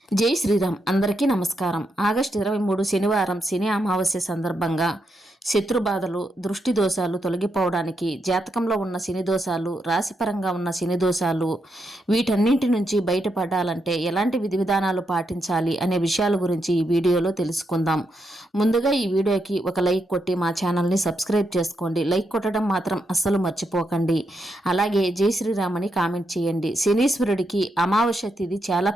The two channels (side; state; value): both; normal; correlation 0.82